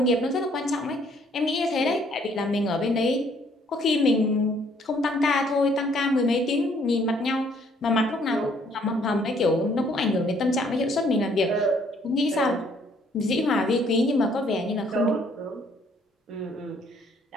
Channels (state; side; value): normal; both; correlation 0.64